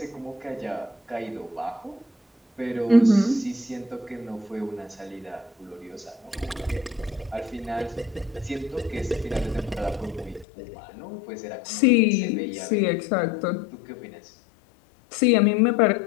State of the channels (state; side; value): drops out; right; at 10.5 s